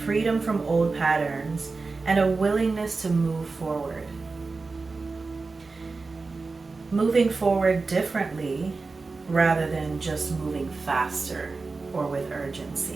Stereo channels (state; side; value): quieter; left; 4.0 dB